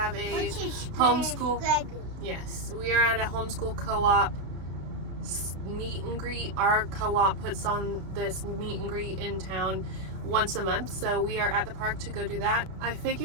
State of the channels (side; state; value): left; late; 32 ms